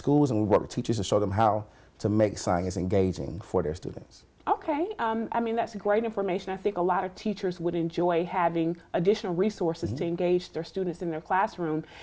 and we work with teachers to show them how to make science engaging for their students. Okay, I mean, that's great information. I think a lot of teachers would enjoy having additional resources to engage their students in their classroom.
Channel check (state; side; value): identical; both; correlation 1.00